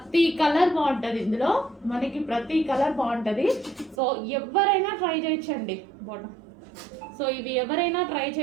కలర్ బాగుంటుంది ఇందులో, మనకి ప్రతి కలర్ బాగుంటుంది. సో ఎవరైనా ట్రై చేయొచ్చండి బాటమ్. సో ఇవి ఎవరైనా ట్రై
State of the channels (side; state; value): left; drops out; at 4.0 s